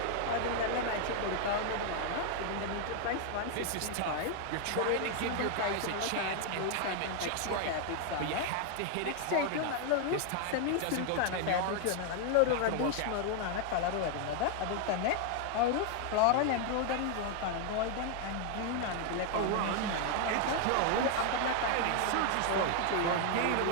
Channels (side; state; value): both; different; correlation 0.00